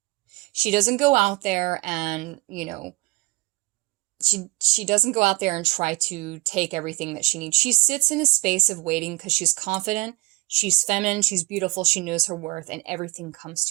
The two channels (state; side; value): quieter; left; 22.6 dB